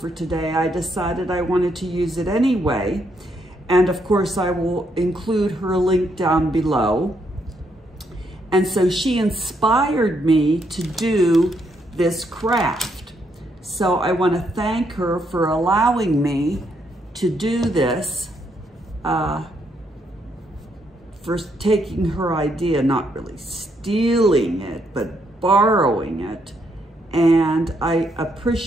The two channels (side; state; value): both; normal; correlation 0.75